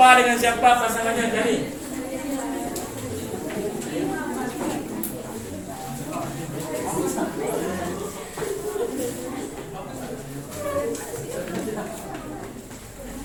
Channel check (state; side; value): identical; both; correlation 1.00